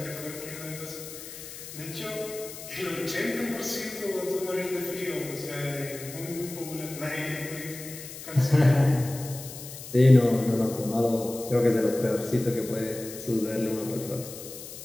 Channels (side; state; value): left; noise; hiss, 12 dB below the sound